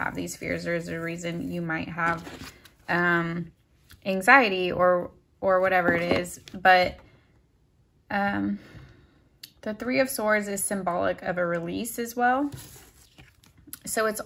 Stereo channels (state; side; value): identical; both; correlation 1.00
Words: these fears. There is a reason you might have anxiety or whatever it is. But the 3 of Swords is symbolic of a release as well. So it's